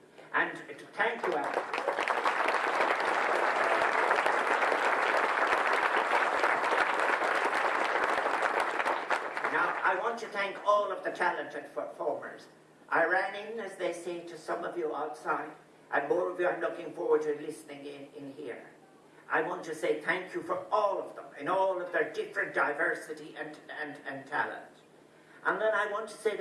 And to thank you, Alan. I want to thank all of the talented performers. I ran in, as they say, to some of you outside, and more of you are looking forward to listening in here. I want to say thank you for all of them, in all of their different diversity and talent. And then I want to say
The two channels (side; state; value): both; identical; correlation 1.00